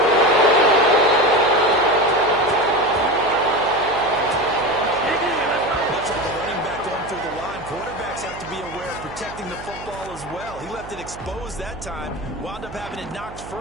Much like the running back going through the line, quarterbacks have to be aware of protecting the football as well. He left it exposed that time, wound up having it knocked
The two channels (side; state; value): right; noise; hum, 15 dB below the sound